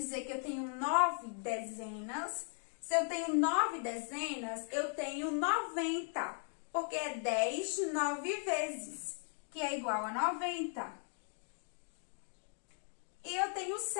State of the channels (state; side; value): silent; right; 53 dB below the other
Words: que eu tenho 9 dezenas. Se eu tenho 9 dezenas, eu tenho 90. Porque é 10 9 vezes, que é igual a 90. E eu tenho